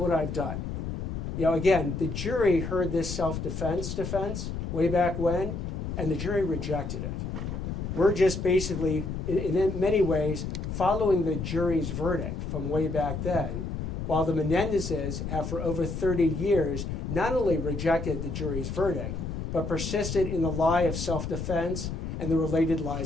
I've done. You know, again, the jury heard this self-defense defense way back when, and the jury rejected it. We're just basically, in many ways, following the jury's verdict from way back then, while the Menendezes have for over 30 years not only rejected the jury's verdict, but persisted in the lie of self-defense and the related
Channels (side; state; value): left; noise; rumble, 4 dB below the sound